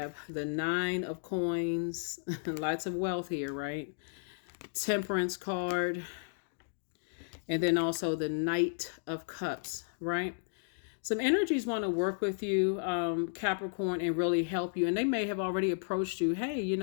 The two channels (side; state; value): right; silent; digital silence